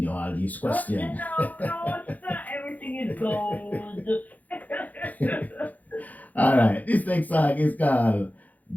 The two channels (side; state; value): right; late; 0.079 ms